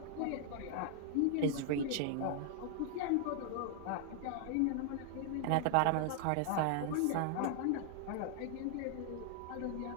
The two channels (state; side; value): different; both; correlation 0.00